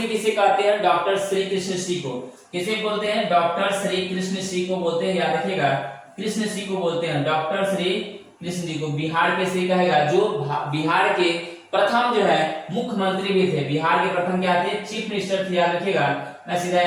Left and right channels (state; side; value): identical; both; correlation 1.00